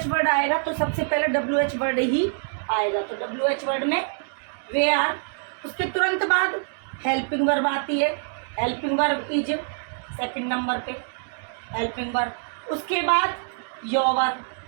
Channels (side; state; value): left; silent; digital silence